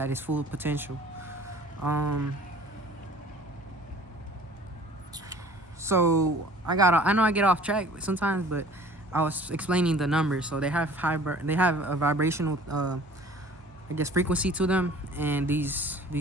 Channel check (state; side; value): normal; both; correlation 0.49